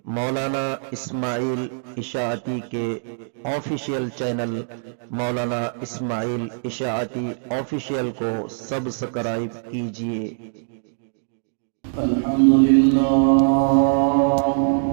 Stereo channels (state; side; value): silent; left; digital silence